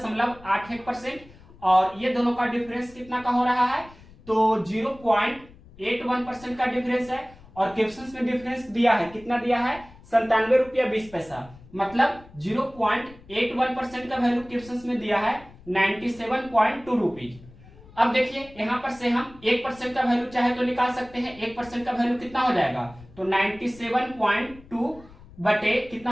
और ये दोनों का डिफरेंस कितना का हो रहा है, तो 0.81% का डिफरेंस है। और क्वेश्चंस में डिफरेंस दिया है, कितना दिया है, 97 रुपया 20 पैसा, मतलब 0.81% का वैल्यू क्वेश्चंस में दिया है 97.2 रुपीज। अब देखिए यहां पर से हम 1% का वैल्यू चाहे तो निकाल सकते हैं। 1% का वैल्यू कितना हो जाएगा, तो 97.2 बटे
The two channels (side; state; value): left; noise; rumble, 22 dB below the sound